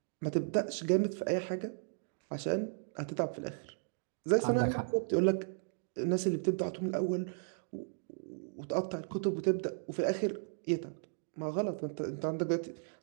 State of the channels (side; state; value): left; silent; digital silence